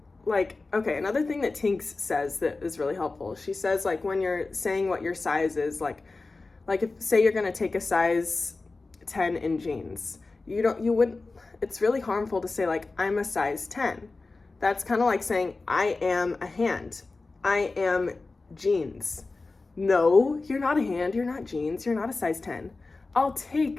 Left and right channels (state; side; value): quieter; right; 3.6 dB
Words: like, okay, another thing that Tinks says that is really helpful. She says, like, when you're saying what your size is, like if, say you're gonna take a size 10 in jeans, you wouldn't, it's really harmful to say, like, I'm a size 10. That's kind of like saying, I am a hand. I am jeans. No, you're not a hand, you're not jeans, you're not a size 10. I'll